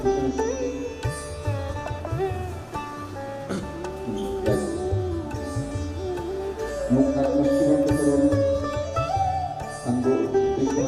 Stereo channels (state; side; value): identical; both; correlation 1.00